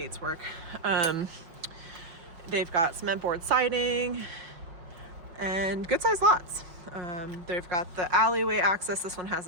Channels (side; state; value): left; late; 5.5 ms